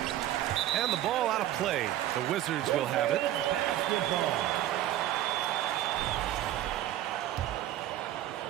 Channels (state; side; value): quieter; left; 12.9 dB